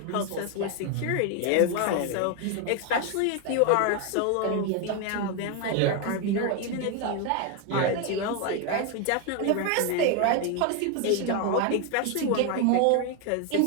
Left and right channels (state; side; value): different; both; correlation 0.01